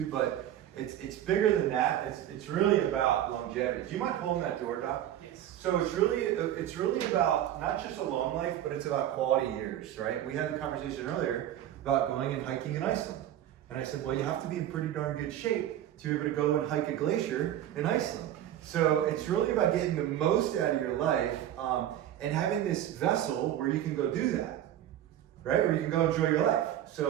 but it's bigger than that. It's really about longevity. Do you mind pulling that door, Doc? Yes. So it's really about not just a long life, but it's about quality years, right? We had the conversation earlier about going and hiking in Iceland. And I said, well, you have to be in pretty darn good shape to be able to go and hike a glacier in Iceland. So it's really about getting the most out of your life and having this vessel where you can go do that, right? Where you can go enjoy your life.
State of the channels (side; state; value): left; quieter; 11.7 dB